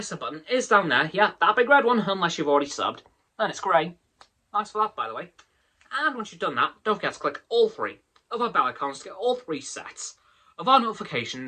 button is down there. Yeah, that big red one, unless you've already subbed. Then it's grey. Thanks for that, by the way. And once you've done that, don't forget to click all 3 of our bell icons to get all 3 sets of our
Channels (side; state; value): both; identical; correlation 1.00